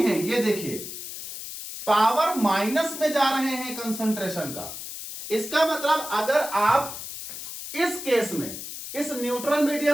ये देखिए पावर माइनस में जा रहे हैं कंसंट्रेशन का। इसका मतलब अगर आप इस केस में, इस न्यूट्रल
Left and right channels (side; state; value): left; noise; hiss, 9 dB below the sound